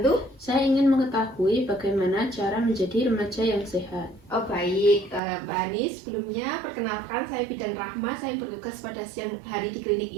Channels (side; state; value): left; drops out; at 5.2 s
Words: Saya ingin mengetahui bagaimana cara menjadi remaja yang sehat. Oh baik, Mbak Hani, sebelumnya perkenalkan saya Bidan Rahma, saya bertugas pada siang hari di klinik